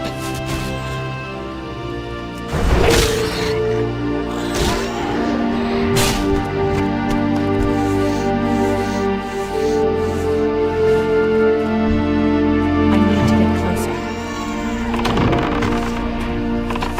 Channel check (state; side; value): identical; both; correlation 1.00